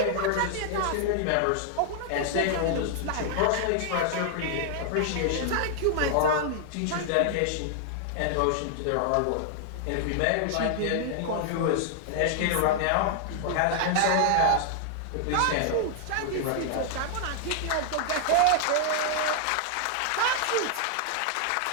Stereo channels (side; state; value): both; different; correlation -0.01